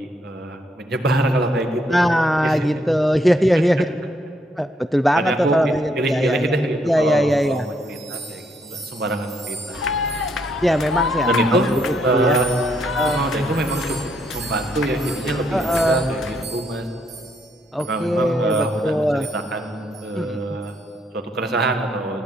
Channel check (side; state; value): both; normal; correlation 0.73